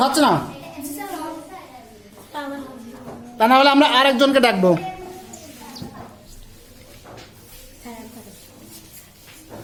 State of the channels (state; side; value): identical; both; correlation 1.00